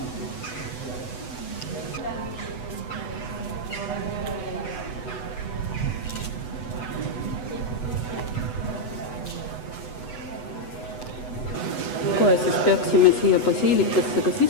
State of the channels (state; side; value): late; right; 8.0 ms